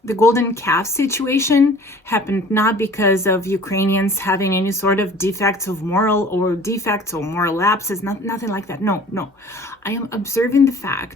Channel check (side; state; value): both; normal; correlation 0.48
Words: The golden calf situation happened not because of Ukrainians having any sort of defects or moral lapses, nothing like that. No. I am observing the